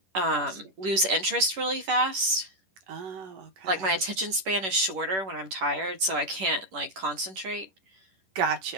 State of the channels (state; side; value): late; left; 10 ms